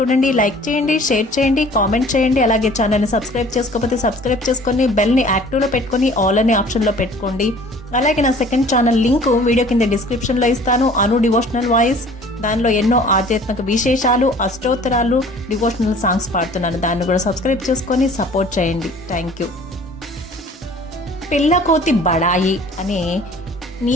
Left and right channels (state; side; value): normal; both; correlation 0.50